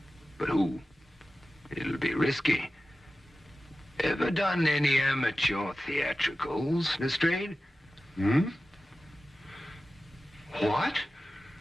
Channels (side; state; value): both; normal; correlation 0.94